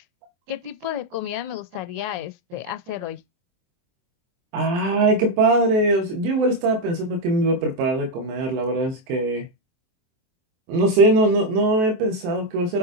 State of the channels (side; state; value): left; late; 23 ms